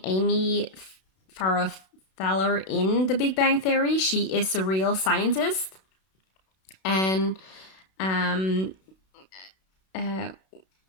Amy Farrah Fowler in The Big Bang Theory. She is a real scientist, and um, uh,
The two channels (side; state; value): right; late; 32 ms